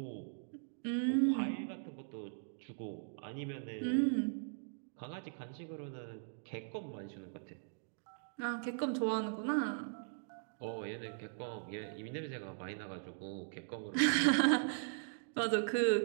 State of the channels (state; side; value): silent; left; digital silence